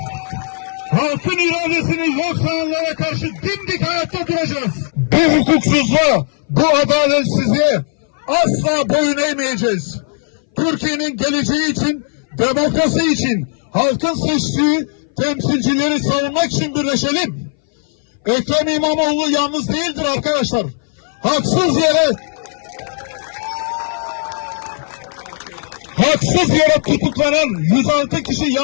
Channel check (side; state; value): right; silent; 61 dB below the other